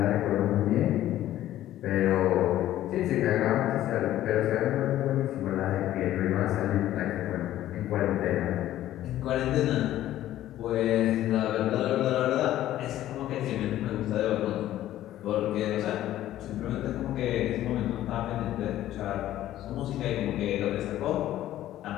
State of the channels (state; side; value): quieter; right; 13.4 dB